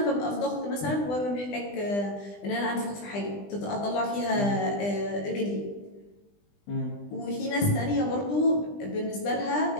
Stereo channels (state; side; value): late; right; 20 ms